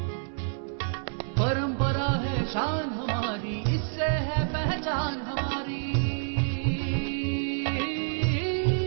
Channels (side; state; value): left; silent; 59 dB below the other